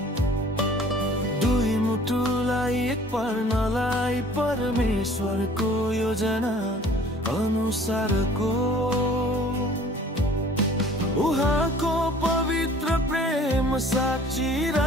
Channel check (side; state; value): both; normal; correlation 0.51